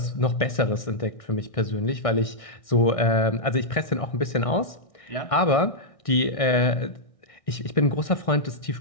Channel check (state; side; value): late; right; 1.6 ms